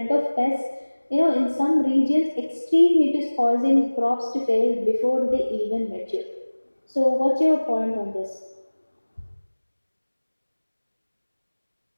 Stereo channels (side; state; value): both; inverted; correlation -1.00